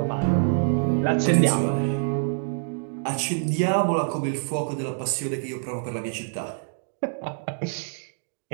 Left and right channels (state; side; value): silent; left; digital silence